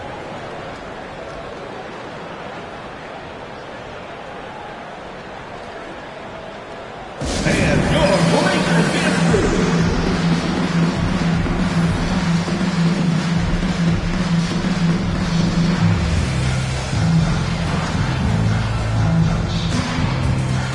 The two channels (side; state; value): both; identical; correlation 1.00